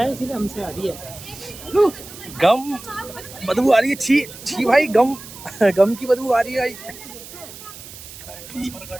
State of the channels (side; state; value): right; noise; hiss, 15 dB below the sound